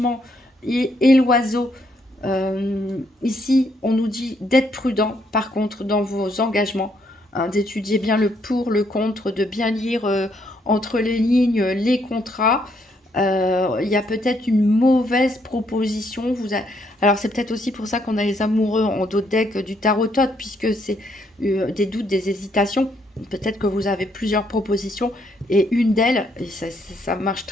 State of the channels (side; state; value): both; normal; correlation 0.72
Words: et l'oiseau, ici, on nous dit d'être prudent, par contre, dans vos engagements, hein, d'étudier bien le pour, le contre, de bien lire entre les lignes les contrats. Il y a peut-être une mauvaise proposition. Alors, c'est peut-être aussi pour ça qu'on a les amoureux en dos de deck du tarot-tot, puisque c'est des doutes, des hésitations. Peut-être que vous avez plusieurs propositions et une d'elles, et ça marche